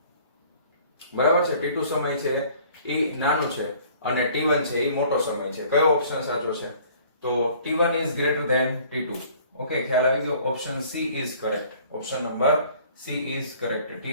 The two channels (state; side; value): inverted; both; correlation -0.53